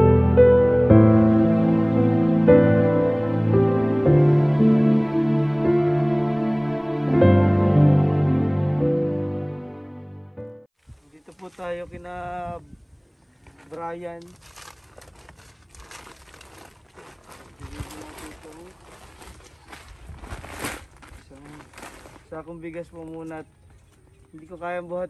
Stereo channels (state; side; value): identical; both; correlation 1.00